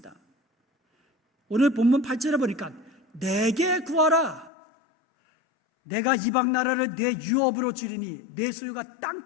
오늘 본문 8절에 보니까 내게 구하라. 내가 이방 나라를 내 유업으로 주리니 내 소유가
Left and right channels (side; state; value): right; drops out; at 4.5 s